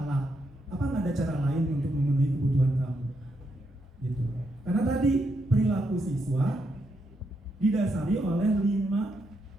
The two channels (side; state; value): both; normal; correlation 0.80